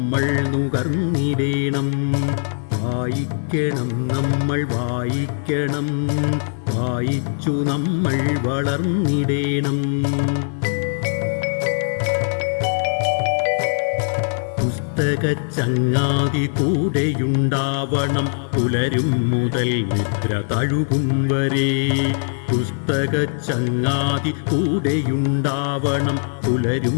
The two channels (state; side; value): silent; right; digital silence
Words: നുകർന്നിടേണം. വായിക്കണം നമ്മൾ വായിക്കണം, വായിച്ചു നമ്മൾ വളർന്നിടേണം. പുസ്തകച്ചങ്ങാതി കൂടെയുണ്ടാവണം, പുലരും മുതൽ നിദ്ര തഴുകും വരെ. പുസ്തകച്ചങ്ങാതി കൂടെയുണ്ടാവണം, പുലരും